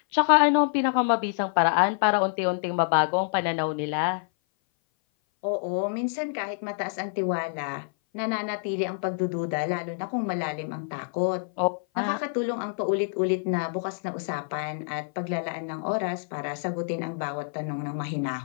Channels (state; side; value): silent; right; 57 dB below the other